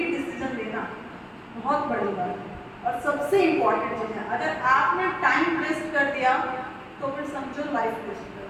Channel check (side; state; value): both; identical; correlation 1.00